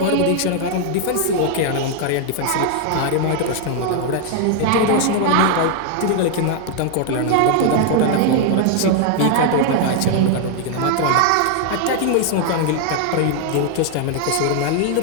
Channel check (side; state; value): both; different; correlation 0.00